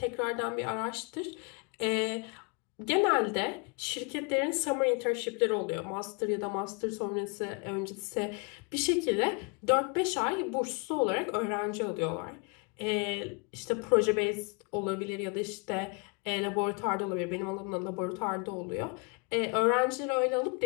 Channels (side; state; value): right; quieter; 32.9 dB